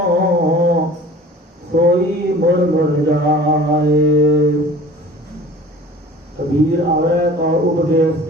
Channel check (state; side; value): normal; both; correlation 0.45